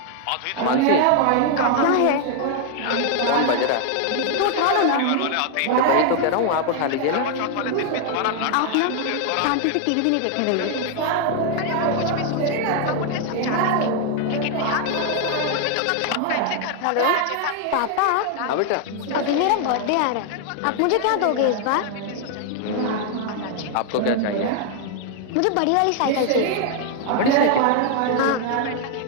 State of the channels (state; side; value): different; both; correlation 0.00